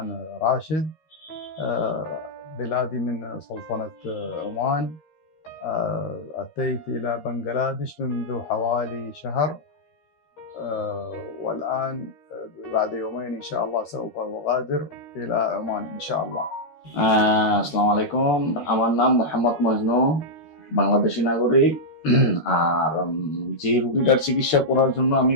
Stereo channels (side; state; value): right; late; 13 ms